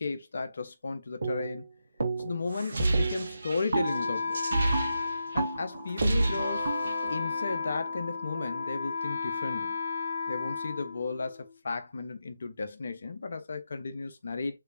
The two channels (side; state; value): both; inverted; correlation -0.87